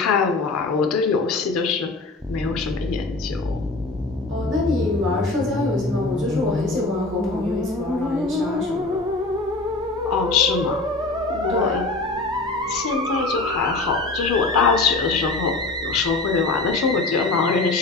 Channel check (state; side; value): quieter; right; 3.3 dB